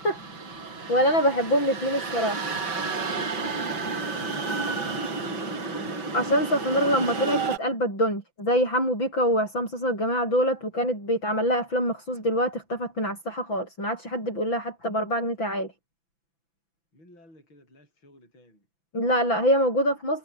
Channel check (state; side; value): late; right; 6.0 ms